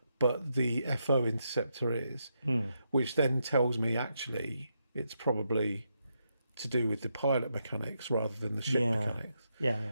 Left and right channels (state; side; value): inverted; both; correlation -0.81